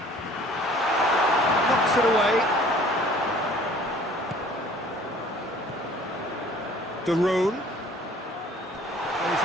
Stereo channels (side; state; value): both; normal; correlation 0.52